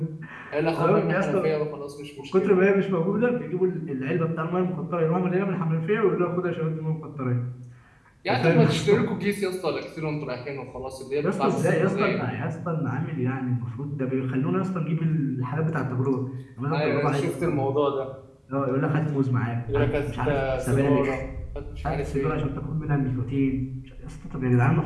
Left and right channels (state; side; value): identical; both; correlation 1.00